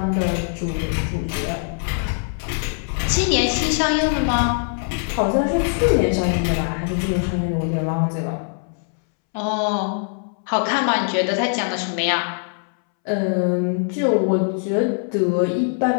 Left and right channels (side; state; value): right; silent; 64 dB below the other